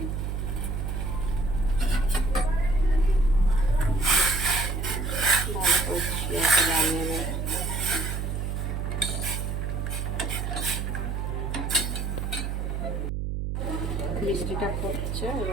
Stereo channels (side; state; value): right; noise; hum, 2 dB below the sound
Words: ভালো করে শিরাটা বানিয়ে নেব। মিষ্টিটা ফুটছে,